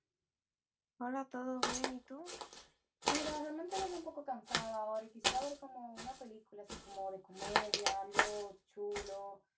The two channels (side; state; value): both; identical; correlation 1.00